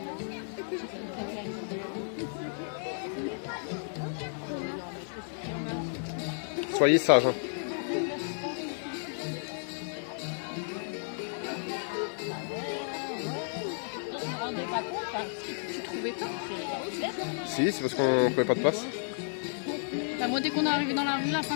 Soyez sage. Hein. Tu trouvais pas? Si, c'est parce qu'on trouvait pas de place. Bah, moi, dès qu'on est arrivé dans la rue, la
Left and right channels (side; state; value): right; silent; 56 dB below the other